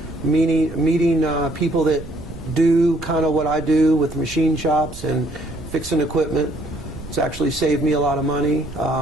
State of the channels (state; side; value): noise; right; rumble, 15 dB below the sound